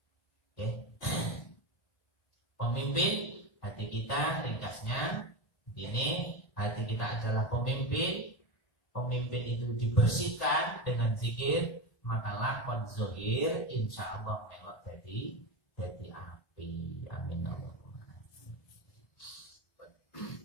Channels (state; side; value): late; right; 1.8 ms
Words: pemimpin hati kita, ringkasnya ini, hati kita adalah pemimpin. Pemimpin itu dibersihkan dengan zikir, maka lakon zohir insya Allah melok jadi api. Amin.